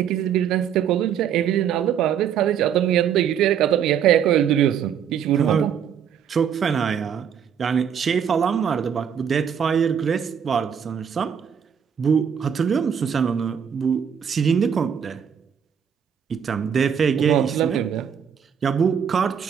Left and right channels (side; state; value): left; quieter; 8.0 dB